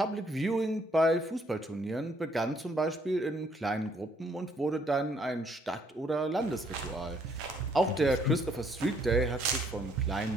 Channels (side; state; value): both; normal; correlation 0.67